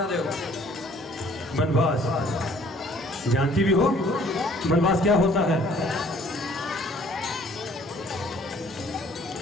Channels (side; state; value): both; normal; correlation 0.58